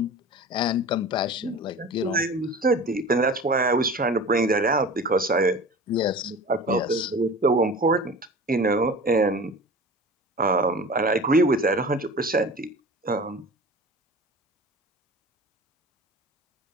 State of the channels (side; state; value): both; normal; correlation 0.37